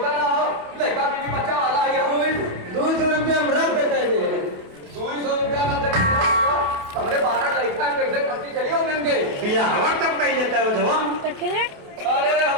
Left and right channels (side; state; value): left; late; 28 ms